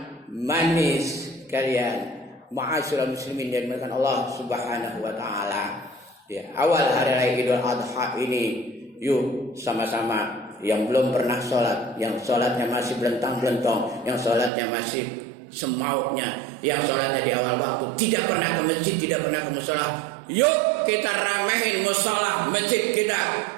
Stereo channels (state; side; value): drops out; left; at 14.5 s